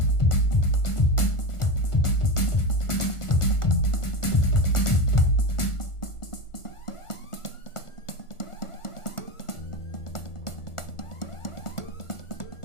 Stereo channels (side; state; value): right; late; 1.4 ms